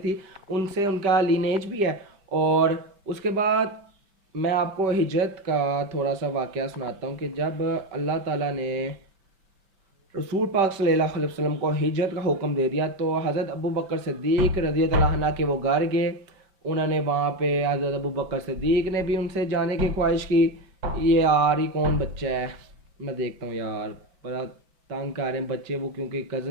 ان سے ان کا لینیج بھی ہے. اور اس کے بعد میں آپ کو ہجرت کا تھوڑا سا واقعہ سناتا ہوں کہ جب اللہ تعالیٰ نے رسول پاک صلی اللہ علیہ وسلم کو ہجرت کا حکم دے دیا تو حضرت ابوبکر صدیق رضی اللہ عنہ کے وہ گھر گئے. انہوں نے وہاں پہ حضرت ابوبکر صدیق نے بھی ان سے جانے کی خواہش کی. یہ یار یہ کون بچہ ہے، میں دیکھتا ہوں یار بڑا تنگ کر رہے ہیں بچے وہ، کیونکہ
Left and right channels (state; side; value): late; left; 5.2 ms